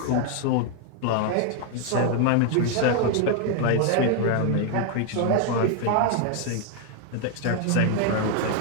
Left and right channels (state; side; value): different; both; correlation 0.01